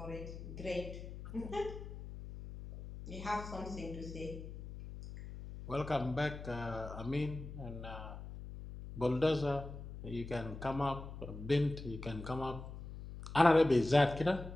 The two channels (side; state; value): left; noise; hum, 11 dB below the sound